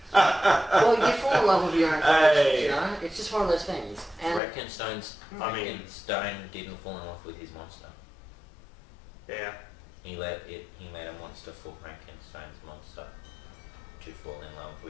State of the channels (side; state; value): right; drops out; at 4.4 s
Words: Well, you fall in love with your own Hey. characters, It's just one of those things. And Frankenstein didn't fall in love with his monster. Yeah. He made a monster for Frankenstein's monster to fall in love